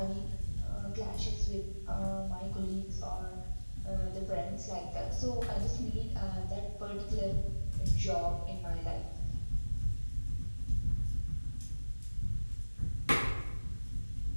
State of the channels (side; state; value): both; inverted; correlation -1.00